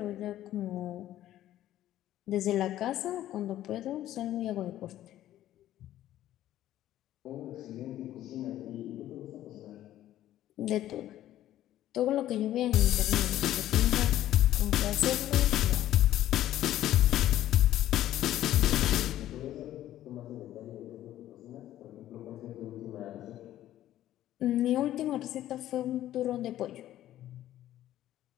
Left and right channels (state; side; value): quieter; right; 13.1 dB